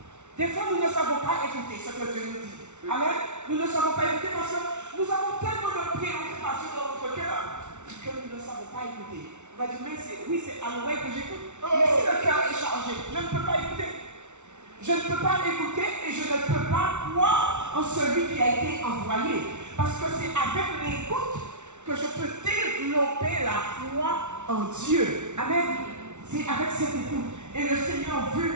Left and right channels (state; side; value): late; left; 0.83 ms